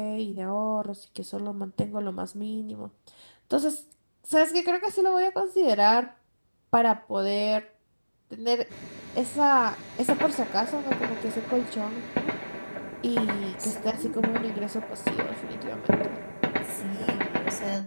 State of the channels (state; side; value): inverted; both; correlation -1.00